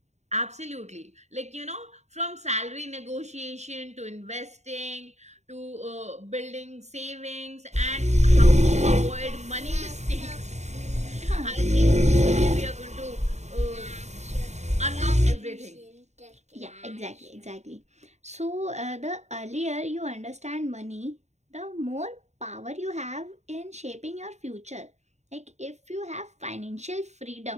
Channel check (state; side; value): late; left; 0.33 ms